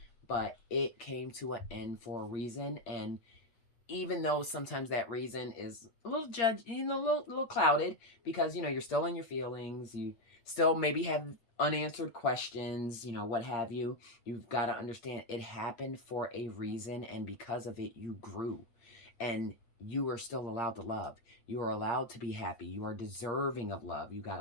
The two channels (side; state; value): right; late; 8.7 ms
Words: but it came to an end for a reason. And even though sometimes that reason is a little a little clouded, because, you're still in your feelings, you still maybe have unanswered questions, what have you. You've got to understand it happened for a reason, and because of it, you grew, and you are still allowed to love. You are allowed to be happy. You are deserving of love. You got